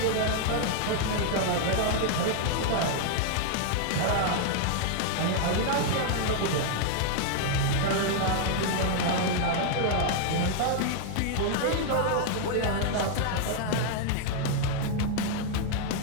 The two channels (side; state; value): both; different; correlation 0.00